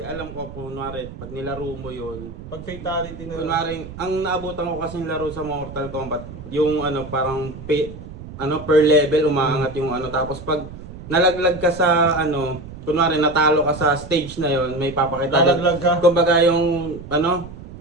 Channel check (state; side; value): noise; right; rumble, 13 dB below the sound